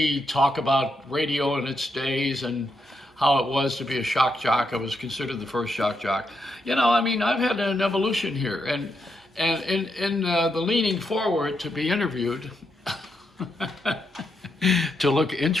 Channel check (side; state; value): both; normal; correlation 0.81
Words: talk about radio in its days and how it was to be a shock jock. I was considered the first shock jock. I've had an evolution here, and in the leaning forward to be interviewed, to look